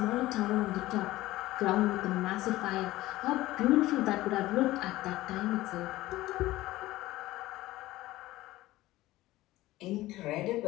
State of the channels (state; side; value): quieter; right; 17.1 dB